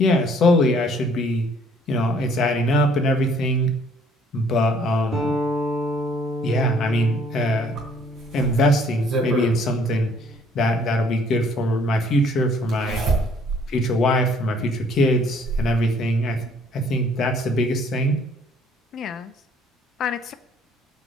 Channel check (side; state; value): both; normal; correlation 0.61